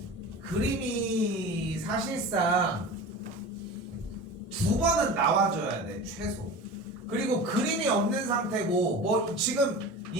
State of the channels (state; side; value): normal; both; correlation 0.33